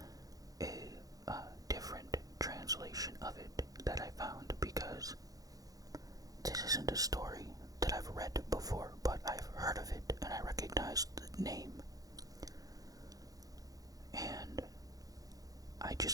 a different translation of it that I found, because this isn't a story that I've read before, but I've heard of it and I recognized the name. And I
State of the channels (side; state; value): left; late; 0.17 ms